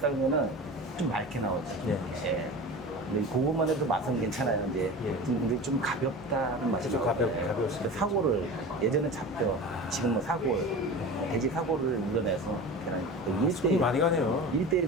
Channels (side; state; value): both; normal; correlation 0.33